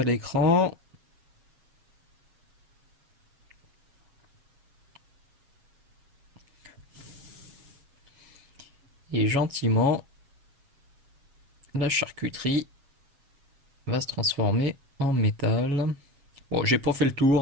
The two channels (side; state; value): left; late; 7.3 ms